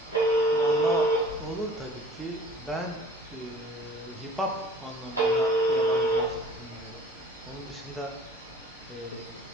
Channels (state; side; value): normal; both; correlation 0.50